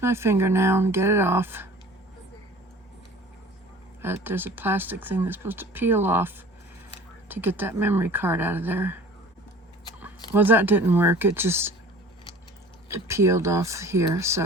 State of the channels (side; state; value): both; normal; correlation 0.45